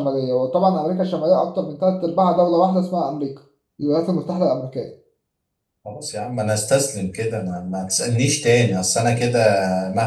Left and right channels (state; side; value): identical; both; correlation 1.00